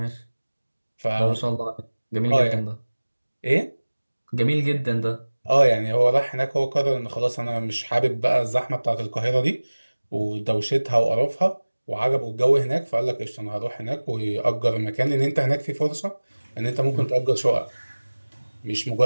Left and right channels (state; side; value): inverted; both; correlation -1.00